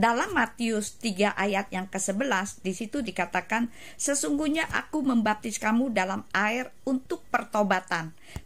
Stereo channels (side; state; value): both; identical; correlation 1.00